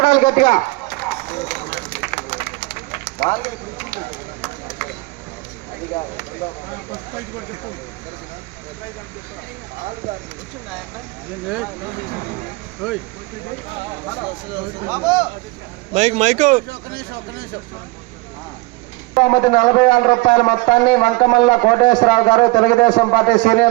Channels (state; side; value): quieter; left; 23.6 dB